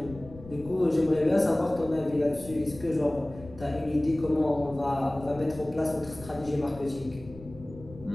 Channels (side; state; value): left; noise; rumble, 17 dB below the sound